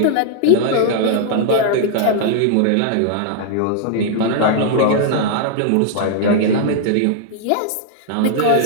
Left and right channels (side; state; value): both; different; correlation -0.01